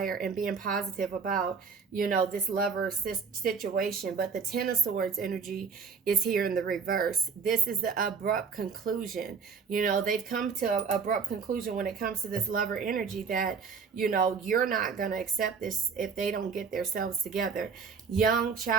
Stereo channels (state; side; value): quieter; left; 5.6 dB